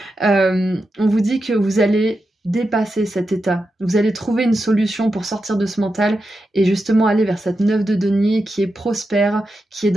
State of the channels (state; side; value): normal; both; correlation 0.89